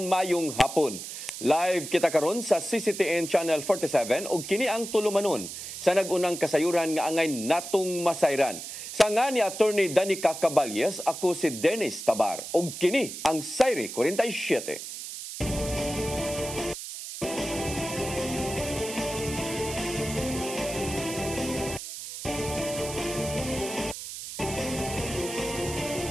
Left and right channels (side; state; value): right; noise; hiss, 9 dB below the sound